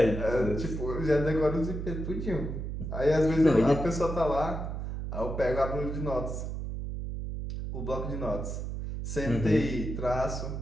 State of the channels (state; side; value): noise; right; hum, 5 dB below the sound